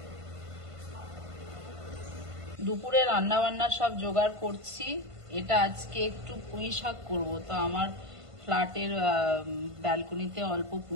দুপুরে রান্না বান্নার সব জোগাড় করছি। এটা আজকে একটু পুঁই শাক করবো, তো আমার ফ্ল্যাটের ব্যালকনিতে অল্প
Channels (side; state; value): left; late; 1.5 ms